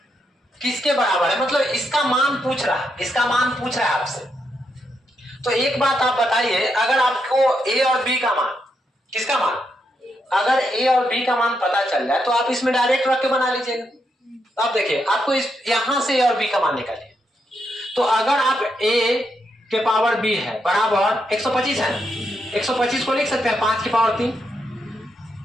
किसके बराबर है, मतलब इसका मान पूछ रहा है आपसे। तो एक बात आप बताइए, अगर आपको ए और बी का मान, किसका मान, अगर ए और बी का मान पता चल जाए तो आप इसमें डायरेक्ट रख के बना लीजिएगा। अब देखिए आपको इस यहां से ए और बी का मान निकालिए। तो अगर आप ए के पावर बी है बराबर 125 है ना, 125 को लिख सकते हैं 5 की पावर 3,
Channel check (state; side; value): normal; both; correlation 0.81